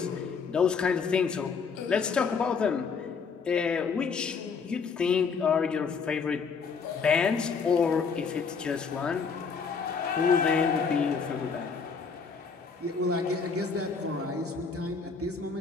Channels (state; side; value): quieter; right; 5.4 dB